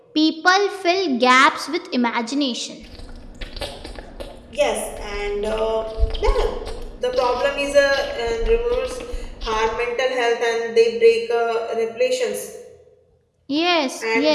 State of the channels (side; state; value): both; identical; correlation 1.00